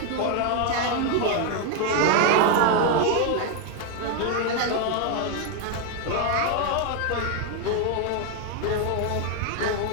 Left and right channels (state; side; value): different; both; correlation 0.01